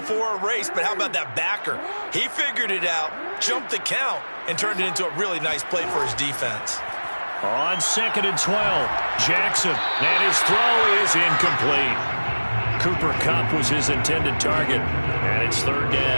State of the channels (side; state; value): both; inverted; correlation -1.00